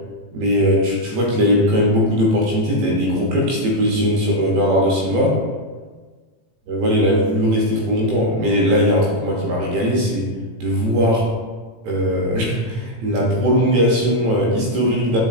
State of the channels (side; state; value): left; late; 18 ms